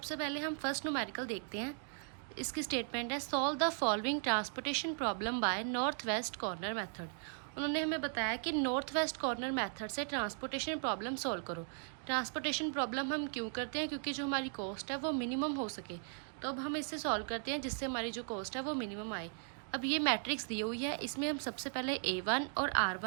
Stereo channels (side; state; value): left; silent; 53 dB below the other